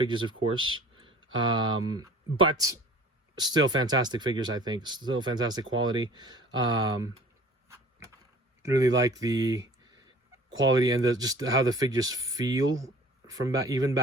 of course. But still fantastic figures, I think. Still fantastic quality. Really like the quality and just how the figures feel from even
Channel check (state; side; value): normal; both; correlation 0.47